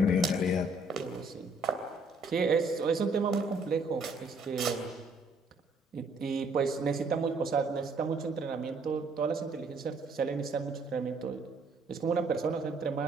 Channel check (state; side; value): normal; both; correlation 0.65